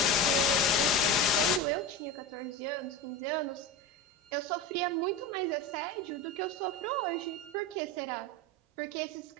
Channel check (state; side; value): normal; both; correlation 0.25